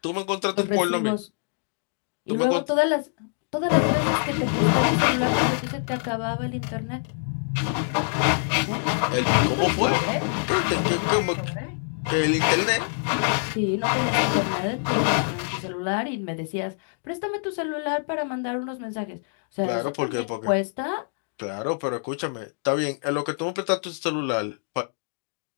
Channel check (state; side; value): silent; right; digital silence